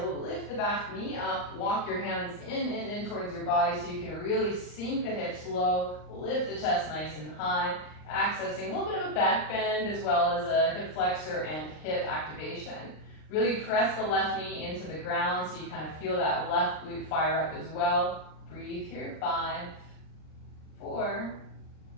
lift the back knee up, walk your hands in towards your body so you can really sink the hips low, lift the chest nice and high, accessing a little bit of a back bend as well as a hip flexor and hip activation. Really press the left knee into the ground so you kind of feel that left glute fire up as well. Breathe here, 5, 4,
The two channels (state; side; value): late; right; 39 ms